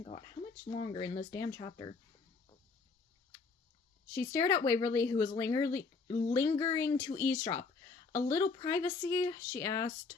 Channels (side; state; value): right; quieter; 4.5 dB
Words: God, how much longer in this damn chapter? She stared at Waverly, who was lingering to eavesdrop. "A little privacy?" she asked.